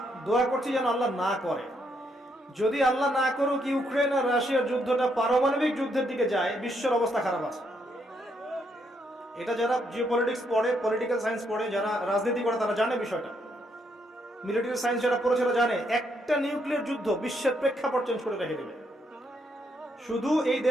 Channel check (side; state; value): both; normal; correlation 0.75